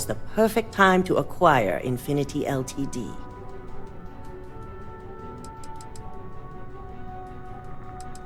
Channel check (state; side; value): identical; both; correlation 1.00